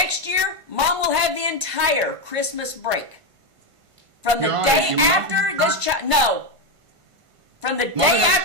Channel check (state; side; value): late; left; 1.5 ms